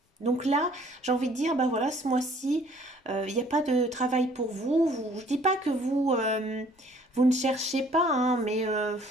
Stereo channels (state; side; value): normal; both; correlation 0.57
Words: Donc là, j'ai envie de dire, ben voilà, ce mois-ci, il n'y a pas de travail pour vous. Je ne dis pas que vous ne cherchez pas, hein, mais